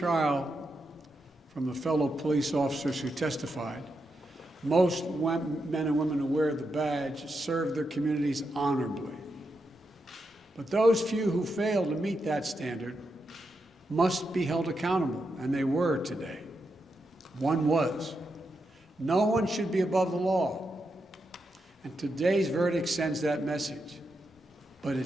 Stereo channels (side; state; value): both; normal; correlation 0.85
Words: from the fellow police officers who testified, most men and women who wear the badge serve their communities honorably. But those few who fail to meet that standard must be held accountable, and they were today. One was. No one should be above the law. And today's verdict sends that message. But